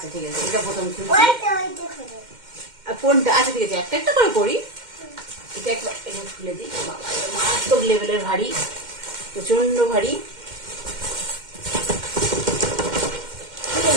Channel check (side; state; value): left; late; 2.1 ms